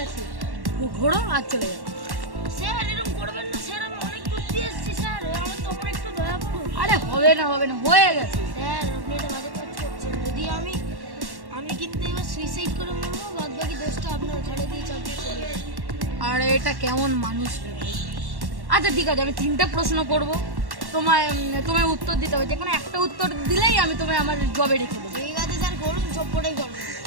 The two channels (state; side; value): late; left; 1.1 ms